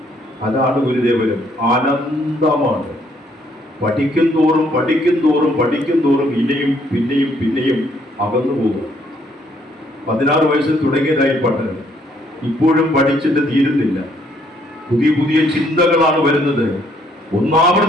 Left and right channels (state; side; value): normal; both; correlation 0.67